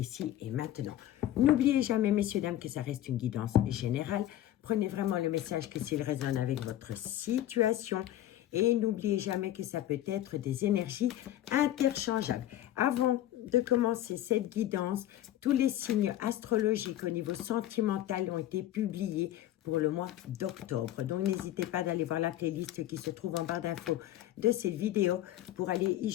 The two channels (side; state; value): right; quieter; 13.2 dB